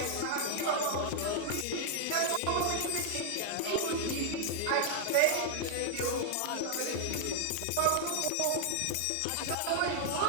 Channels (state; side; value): different; both; correlation 0.00